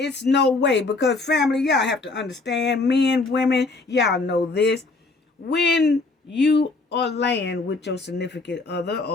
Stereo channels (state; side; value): quieter; right; 3.6 dB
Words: no way, because family, y'all have to understand, men, women, y'all know this. When you are laying with your significant other